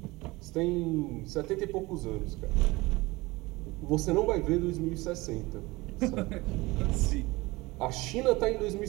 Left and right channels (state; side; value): quieter; left; 21.7 dB